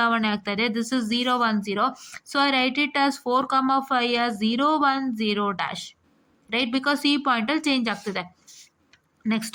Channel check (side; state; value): both; identical; correlation 1.00